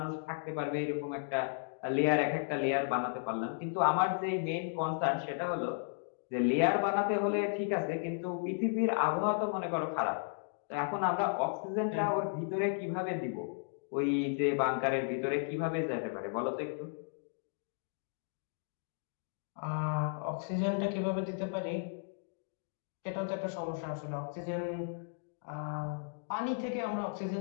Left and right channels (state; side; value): silent; right; digital silence